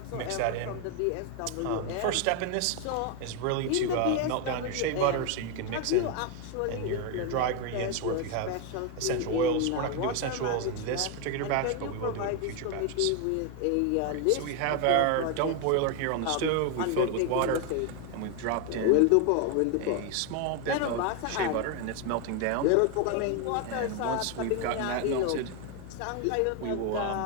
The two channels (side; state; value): both; different; correlation 0.01